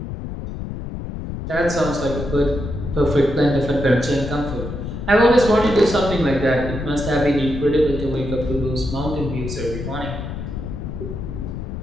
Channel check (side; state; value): left; noise; rumble, 7 dB below the sound